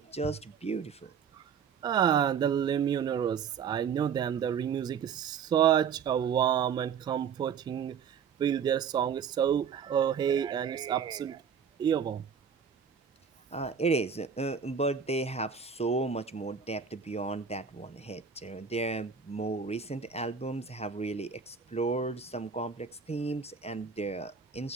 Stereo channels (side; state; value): left; quieter; 6.8 dB